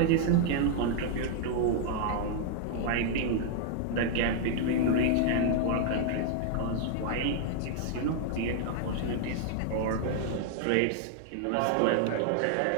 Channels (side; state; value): both; different; correlation 0.00